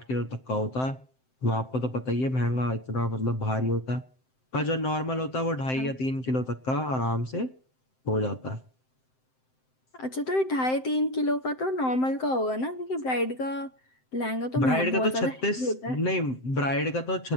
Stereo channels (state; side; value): late; right; 7.7 ms